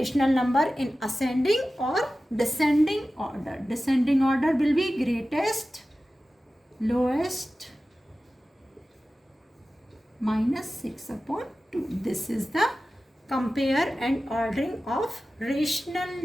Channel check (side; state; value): both; normal; correlation 0.95